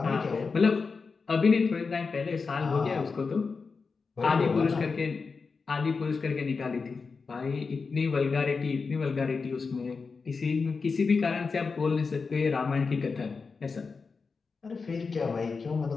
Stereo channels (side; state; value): right; quieter; 4.7 dB